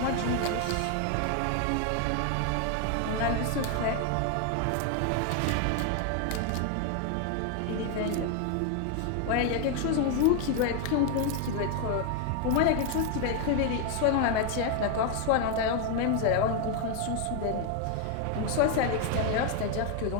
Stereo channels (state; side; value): different; both; correlation 0.00